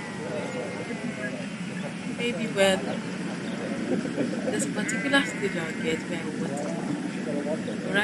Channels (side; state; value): both; identical; correlation 1.00